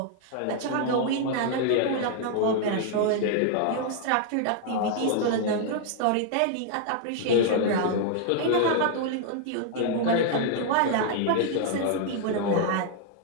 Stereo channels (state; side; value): different; both; correlation 0.00